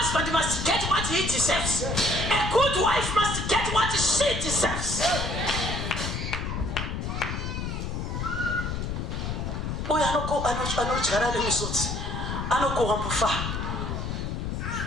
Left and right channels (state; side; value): noise; left; rumble, 3 dB below the sound